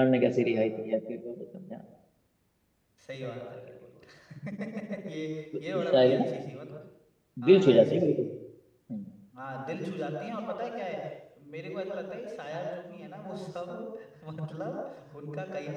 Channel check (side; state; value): both; identical; correlation 1.00